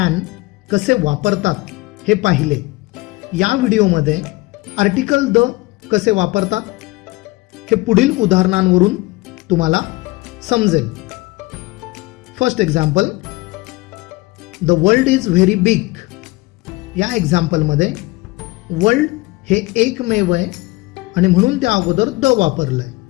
कसे वापरतात हे पाहिले. या व्हिडिओमध्ये आर्टिकल द कसे वापरतात हे पुढील उदाहरणांवरून तुम्हाला समजेल. First example, the world is very big. या एक्झाम्पलमध्ये वर्ल्ड हे एकमेव आहे आणि म्हणून त्या अगोदर द वापरलंय.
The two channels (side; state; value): right; quieter; 22.0 dB